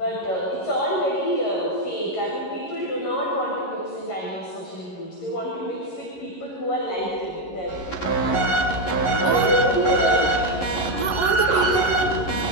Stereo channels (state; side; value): late; right; 11 ms